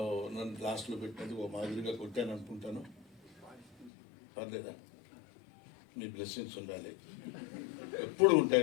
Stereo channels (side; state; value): right; drops out; at 3.9 s